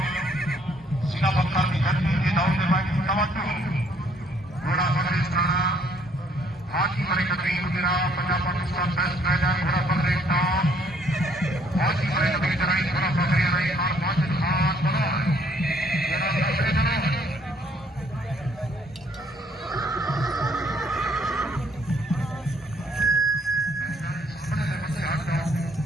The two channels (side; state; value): both; normal; correlation 0.65